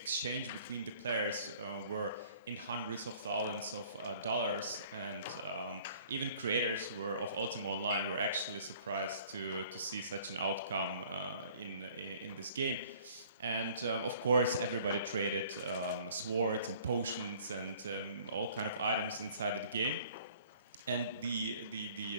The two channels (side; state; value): both; inverted; correlation -0.54